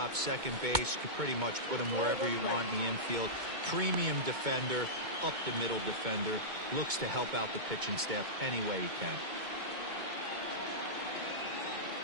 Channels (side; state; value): left; late; 2.2 ms